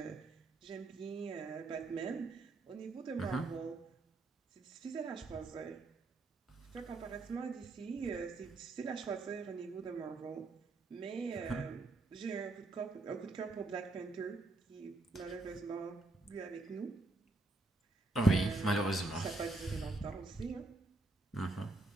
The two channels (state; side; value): quieter; left; 3.0 dB